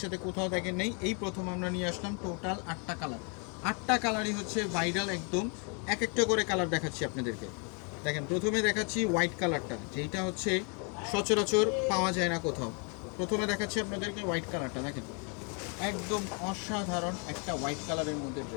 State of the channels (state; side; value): quieter; right; 36.8 dB